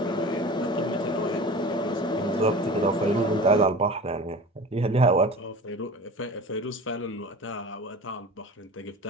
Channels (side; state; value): both; normal; correlation 0.37